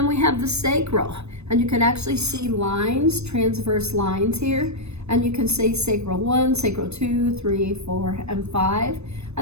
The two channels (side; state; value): left; late; 0.80 ms